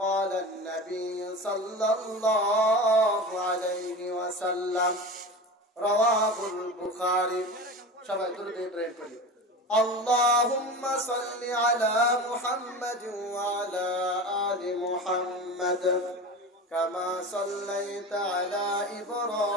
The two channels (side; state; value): both; normal; correlation 0.30